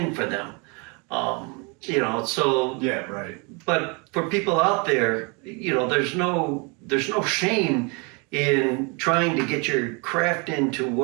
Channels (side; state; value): left; quieter; 31.6 dB